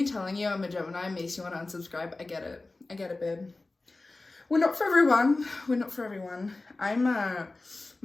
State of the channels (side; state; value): right; quieter; 3.2 dB